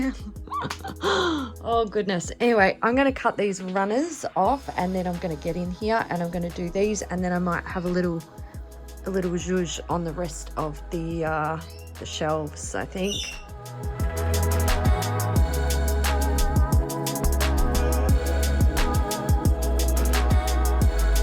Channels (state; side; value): identical; both; correlation 1.00